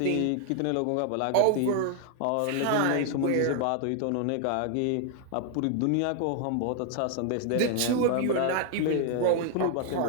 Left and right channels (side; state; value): both; different; correlation 0.00